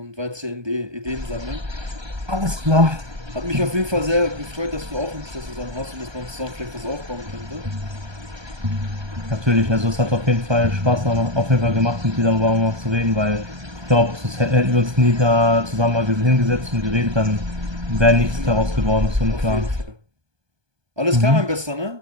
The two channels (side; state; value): left; late; 1.2 ms